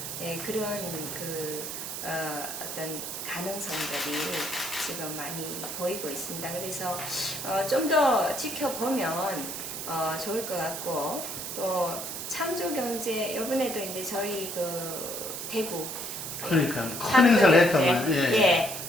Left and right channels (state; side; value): noise; right; hiss, 6 dB below the sound